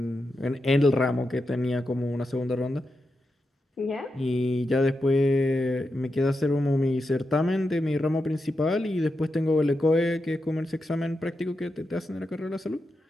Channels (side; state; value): both; normal; correlation 0.88